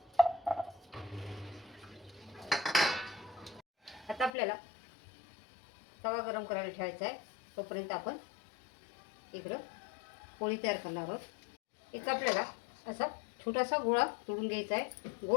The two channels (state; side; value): drops out; right; at 4.3 s